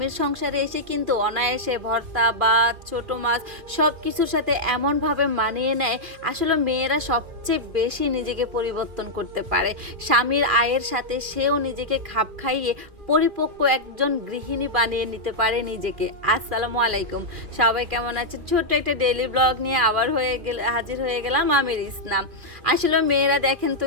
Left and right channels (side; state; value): left; late; 2.4 ms